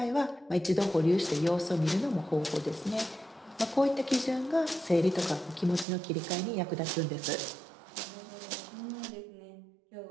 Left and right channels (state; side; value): drops out; left; at 5.9 s